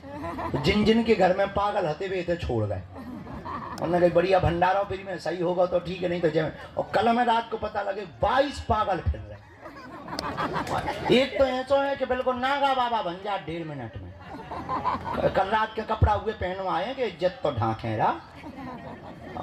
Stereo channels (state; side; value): identical; both; correlation 1.00